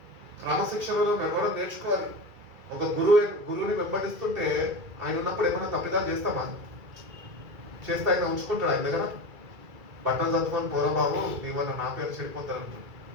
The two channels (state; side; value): late; left; 2.3 ms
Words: క్రమశిక్షణలో నడవడం నేర్చుకోవాలి. ఒక గురువుని వెంబడిస్తుంటే ఆయన ఉన్నప్పుడు ఏమైనా తప్పిదాలు చేస్తామా? చేస్తే ఆయన ఉంచుకుంటాడు ఆయన దగ్గర. బట్టలు చదువుకొని పోరా బాబు నీ వల్ల నా పేరు చెడిపోతారు అంటాడు.